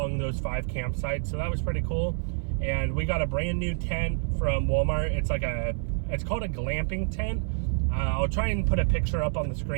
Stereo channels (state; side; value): silent; left; 57 dB below the other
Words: those 5 campsites. So that was pretty cool. And we got a brand new tent from Walmart. It's called a glamping tent. I'll try and put a picture up on the